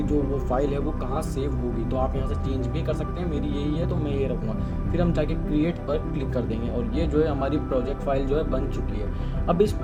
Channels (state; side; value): identical; both; correlation 1.00